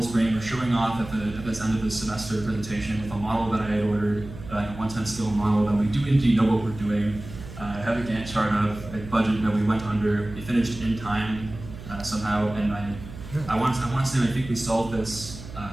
swing. We're showing off at this end of the semester presentation with a model that I had ordered, a 110 scale model that we do indeed know what we're doing. I have a Gantt chart of a budget that we went under. We finished in time somehow, and I want to say I think we solved this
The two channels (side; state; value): right; noise; hum, 13 dB below the sound